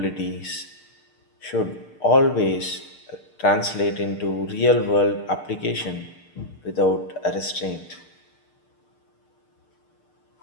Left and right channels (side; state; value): right; late; 6.7 ms